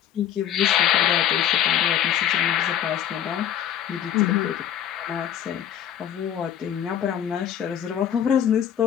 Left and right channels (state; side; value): quieter; right; 10.0 dB